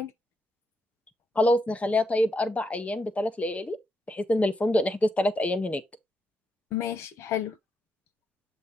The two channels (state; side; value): normal; both; correlation 0.81